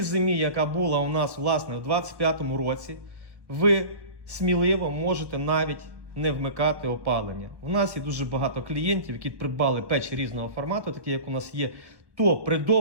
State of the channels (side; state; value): left; late; 1.2 ms